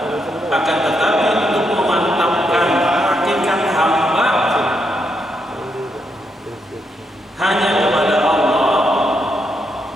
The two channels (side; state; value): both; normal; correlation 0.80